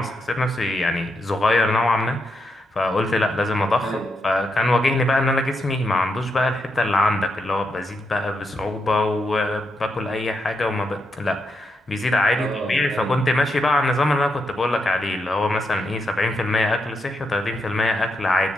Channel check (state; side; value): normal; both; correlation 0.82